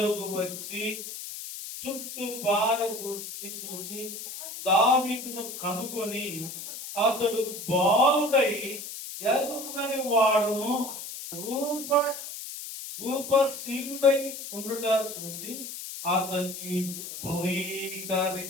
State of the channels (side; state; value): left; noise; hiss, 9 dB below the sound